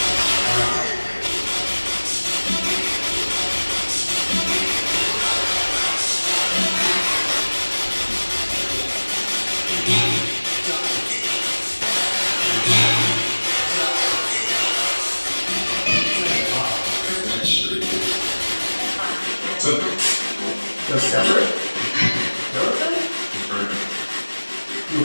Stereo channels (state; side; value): inverted; both; correlation -1.00